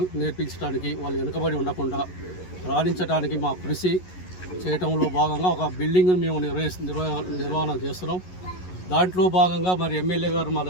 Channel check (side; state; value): right; late; 11 ms